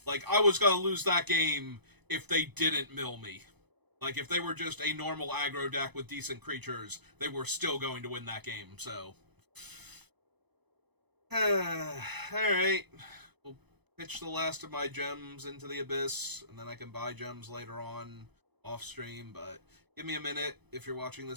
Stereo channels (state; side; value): late; left; 0.99 ms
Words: Like, I was gonna lose that game if they didn't mill me. Like, if they were just a normal aggro deck with decent creatures, they were still going to win that game, so... Alright. We'll pitch the last of my gems into the abyss, and then I can buy gems later on off-stream, but give me a minute if you're watching